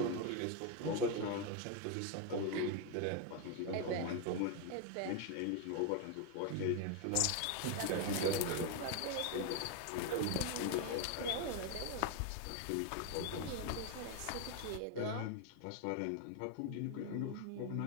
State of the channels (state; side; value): different; both; correlation 0.01